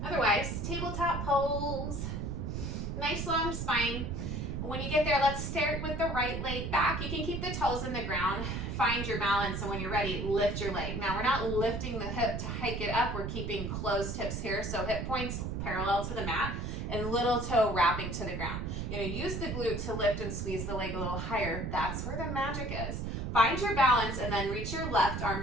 Otherwise, tabletop pose. Nice long spine. When you get there, let's start with the right leg back. You can keep the toes in the ground, find your balance, and when you're ready, lift your leg. Now, we're not lifting the hip to hike it up. We're keeping closed hips here, so hip points parallel to the mat and little toe wrapping to the ground. You're gonna use the glute to lift and squeeze the leg a little higher. That's where the magic is. Find your balance and then reach your left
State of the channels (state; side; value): noise; right; rumble, 3 dB below the sound